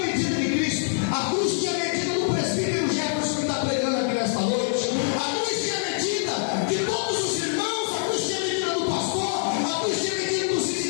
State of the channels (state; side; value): silent; right; 58 dB below the other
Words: de Cristo, a cruz tinha medida do presbítero Jefferson que está pregando aqui nesta noite, a cruz tinha medida de todos os irmãos, a cruz tinha medida do pastor, a cruz tinha medida dos